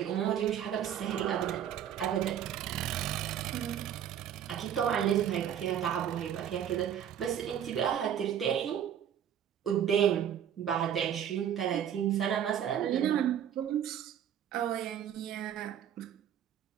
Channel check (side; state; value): left; quieter; 9.5 dB